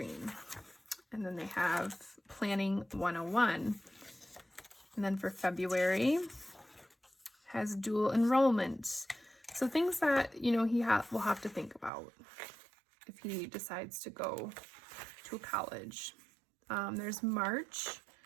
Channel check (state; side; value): drops out; left; at 11.9 s